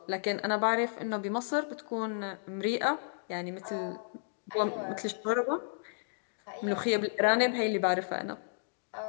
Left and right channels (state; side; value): silent; right; digital silence